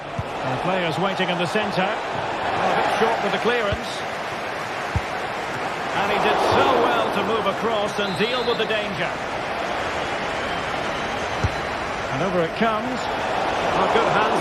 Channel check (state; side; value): identical; both; correlation 1.00